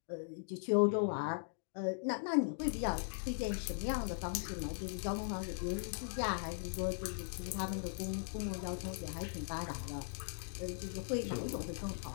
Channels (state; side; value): silent; right; digital silence